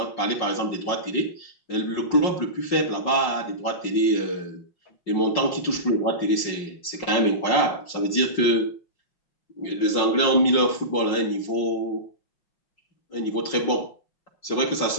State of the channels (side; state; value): right; late; 5.5 ms